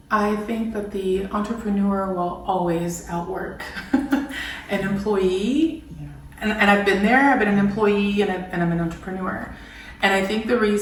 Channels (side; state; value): both; identical; correlation 1.00